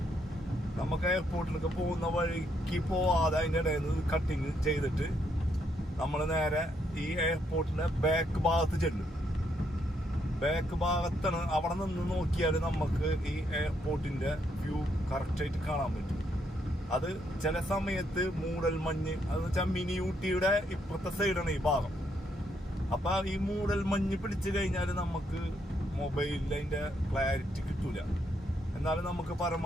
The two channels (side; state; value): both; normal; correlation 0.75